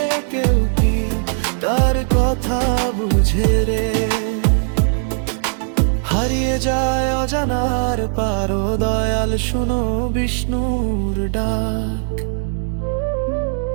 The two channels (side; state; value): left; silent; 64 dB below the other